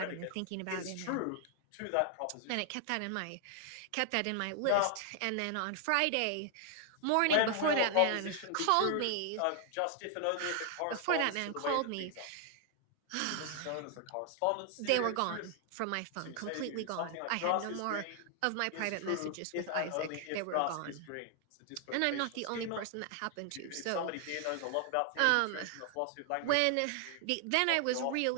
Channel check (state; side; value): different; both; correlation 0.00